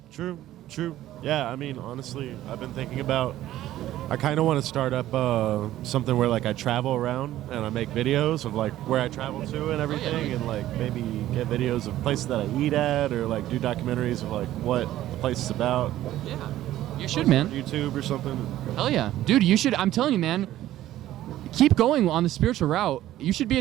True. Yeah, I mean, honestly, I've been thinking about, I kind of want to start up something where like I travel around and I make videos of like where I travel to and everything, and like maybe get videos of places that I eat at, or like do documentaries of like what the place is about. Yeah, you should, man. YouTube or something. Hell yeah. Dude, you should, I'm telling you, man, keep going on the spiritual route. You should be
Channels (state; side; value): quieter; left; 13.9 dB